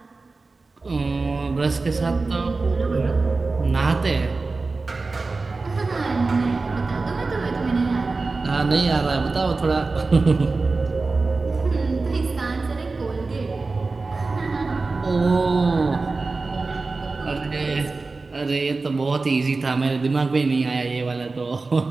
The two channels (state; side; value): quieter; left; 3.8 dB